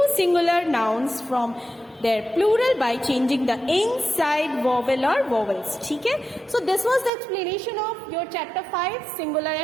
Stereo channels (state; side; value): drops out; left; at 7.1 s